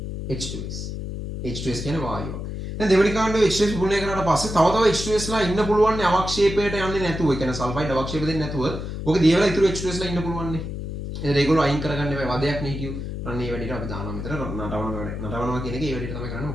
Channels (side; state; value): left; noise; hum, 6 dB below the sound